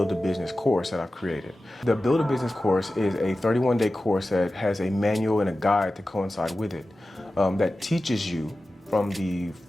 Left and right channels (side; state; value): both; normal; correlation 0.94